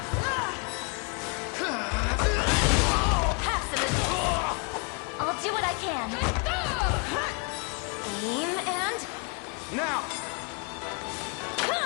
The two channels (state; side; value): quieter; right; 34.7 dB